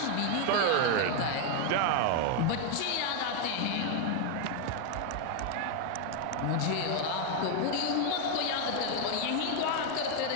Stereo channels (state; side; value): different; both; correlation 0.01